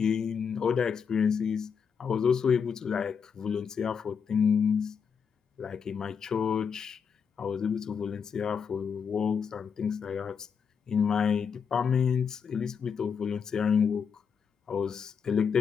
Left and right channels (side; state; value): right; quieter; 6.5 dB